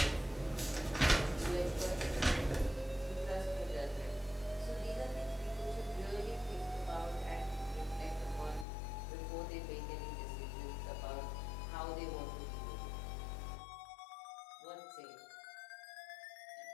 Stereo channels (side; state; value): right; drops out; at 8.7 s